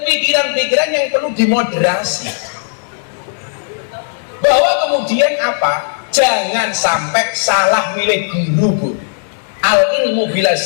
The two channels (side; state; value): right; silent; 68 dB below the other